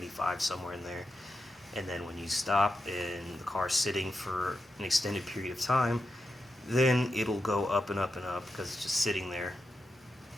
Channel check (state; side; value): normal; both; correlation 0.88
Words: somewhere in there. And then when you stop and the car's sitting for an extended period of time, then it'll go up and up and up because it's just sitting there